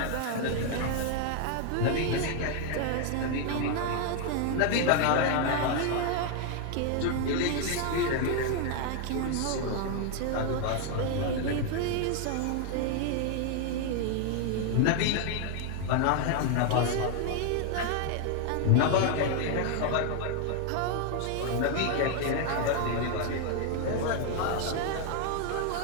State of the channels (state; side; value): different; both; correlation 0.00